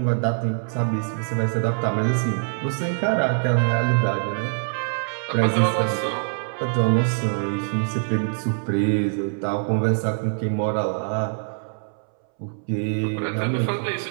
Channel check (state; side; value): silent; left; 63 dB below the other